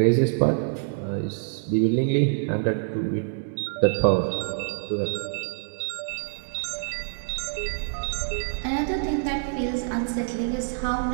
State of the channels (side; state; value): left; silent; digital silence